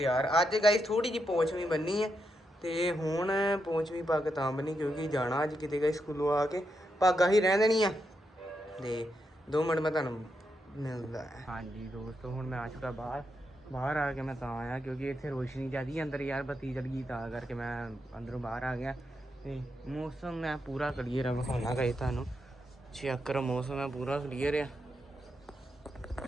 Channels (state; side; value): normal; both; correlation 0.83